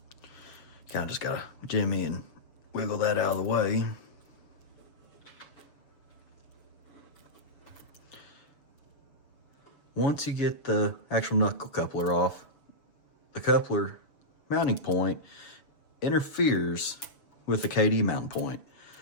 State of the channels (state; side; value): late; right; 7.0 ms